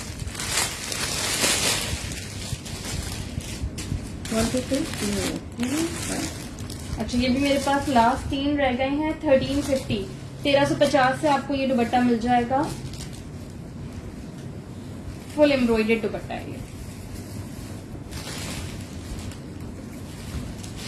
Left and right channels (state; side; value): identical; both; correlation 1.00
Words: अच्छा ये भी मेरे पास लास्ट 3 रह गए हैं, 1350, 1350 से आपको ये दुपट्टा मिल जाएगा। फुल एम्ब्रॉयडर्ड दुपट्टा है ये।